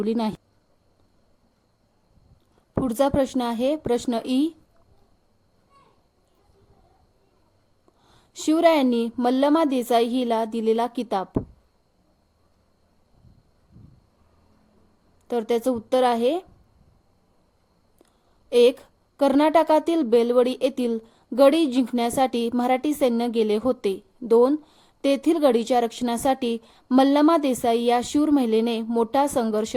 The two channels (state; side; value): identical; both; correlation 1.00